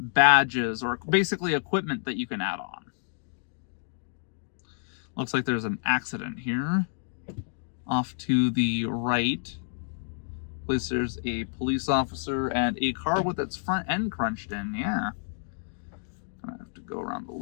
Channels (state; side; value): silent; right; digital silence